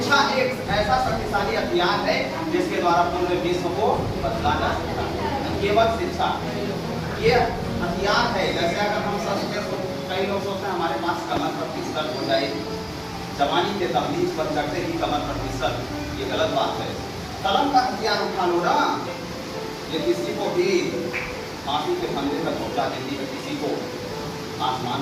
एक ऐसा शक्तिशाली हथियार है जिसके द्वारा पूरे विश्व को बदला जा सकता है। केवल शिक्षा ये हथियार है। जैसे अगर हम कई लोग सोचते हैं हमारे पास कमर पर पिस्टल हो जाए, जवानी के तहलीज पर चढ़ते ही कमर पर पिस्टल, ये गलत बात है। कलम का हथियार उठा लो ना, ये किसी को भी फांसी के फंदे तक पहुंचा देती है, किसी को आसमान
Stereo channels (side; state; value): both; identical; correlation 1.00